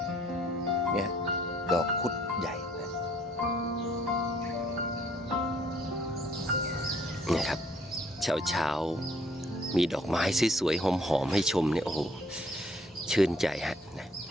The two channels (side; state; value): both; normal; correlation 0.62